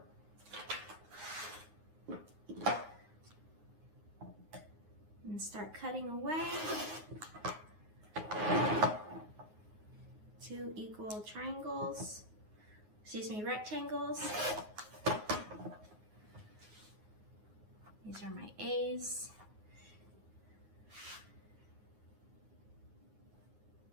And start cutting away. 2 equal triangles, rectangles. These are my A's.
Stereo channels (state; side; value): late; left; 9.5 ms